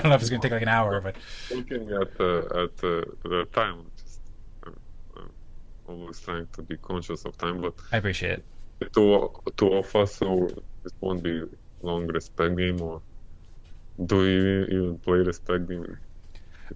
know if it's going to take an hour, but looking at the time, I'm always trying to be conscious of time, but I appreciate it. Two of us, so it won't be long respect game, or do you even play respect game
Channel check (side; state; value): both; identical; correlation 1.00